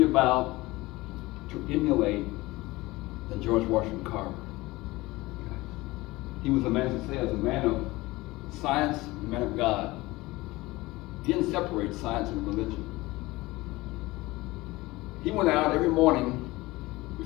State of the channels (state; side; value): quieter; right; 20.4 dB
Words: about, to emulate, than George Washington Carver. Okay? He was a man, as I say, as a man of science, a man of God. He didn't separate science and religion. He went out every morning